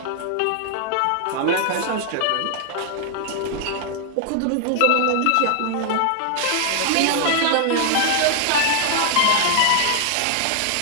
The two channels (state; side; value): different; both; correlation 0.00